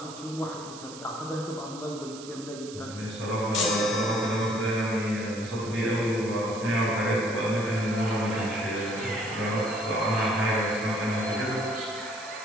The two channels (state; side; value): noise; right; hiss, 15 dB below the sound